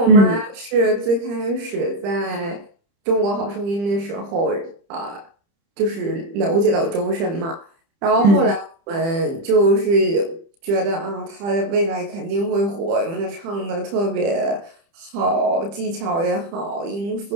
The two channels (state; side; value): late; left; 30 ms